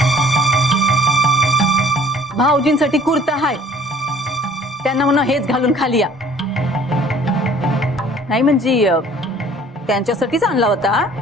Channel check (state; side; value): normal; both; correlation 0.54